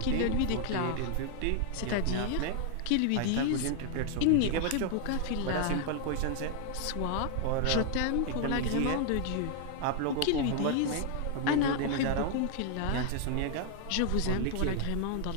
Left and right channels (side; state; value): both; different; correlation 0.00